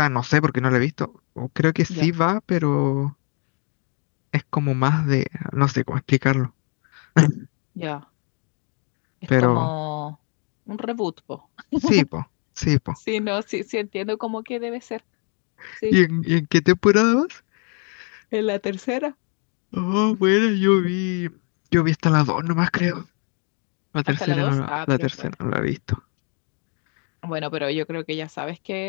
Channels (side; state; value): right; quieter; 37.9 dB